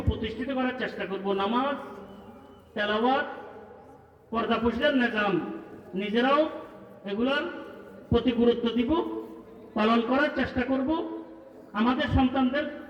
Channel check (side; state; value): both; identical; correlation 1.00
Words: করার চেষ্টা করব। নামাজ, তেলাওয়াত, পর্দা পুশিদার নিজাম নিজেরাও এগুলার প্রতি গুরুত্ব দিব, পালন করার চেষ্টা করব, আমাদের